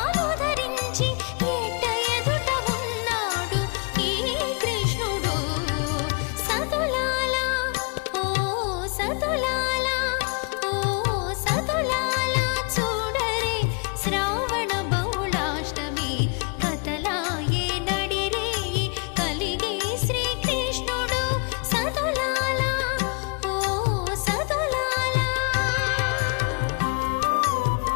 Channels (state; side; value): quieter; right; 34.9 dB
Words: ధరించి ఎట్ట ఎదుట ఉన్నాడు ఈ కృష్ణుడు సతులాల ఓ సతులాల ఓ సతులాల చూడరే శ్రావణ బహుళాష్టమి కథలాయే నడిరేయి కలిగే శ్రీకృష్ణుడు సతులాల ఓ సతులాల